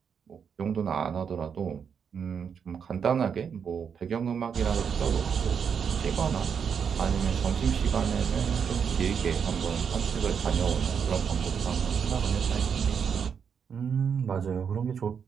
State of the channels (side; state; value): left; quieter; 7.0 dB